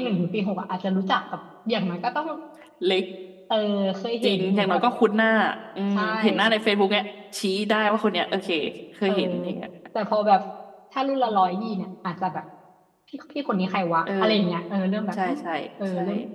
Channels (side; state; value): both; identical; correlation 1.00